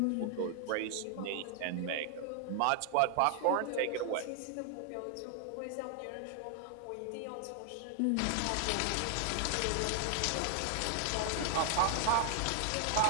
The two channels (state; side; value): different; both; correlation 0.00